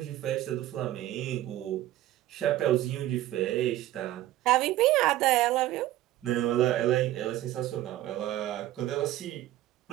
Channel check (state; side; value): quieter; left; 14.6 dB